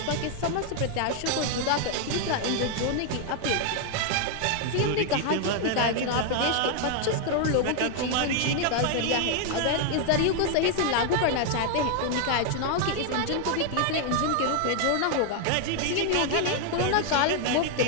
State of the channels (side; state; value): both; different; correlation 0.00